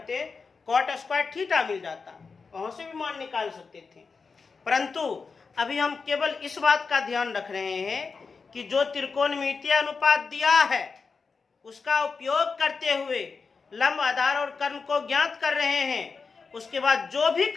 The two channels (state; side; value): quieter; right; 4.9 dB